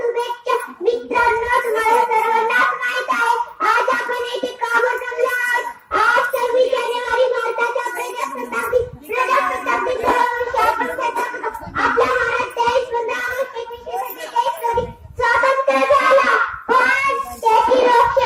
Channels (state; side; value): identical; both; correlation 1.00